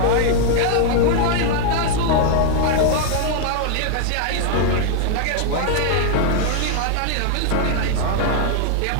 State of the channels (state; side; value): different; both; correlation 0.00